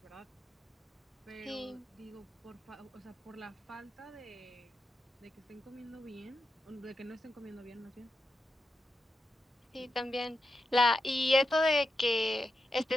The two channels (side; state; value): both; normal; correlation 0.88